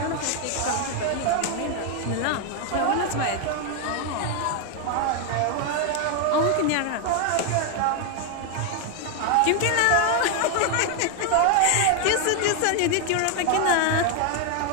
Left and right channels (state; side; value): different; both; correlation 0.01